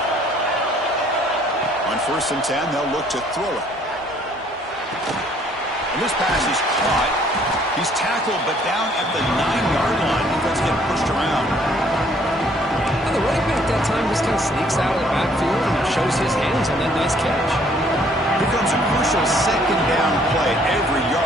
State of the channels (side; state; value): both; normal; correlation 0.62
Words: On 1st and 10, they'll look to throw it. And this pass is caught. He's tackled, but down at the 9-yard line. Defense getting pushed around. And the running back that time just kind of sneaks out of the backfield and shows his hands on that nice catch. Here comes a crucial 2nd down play. Every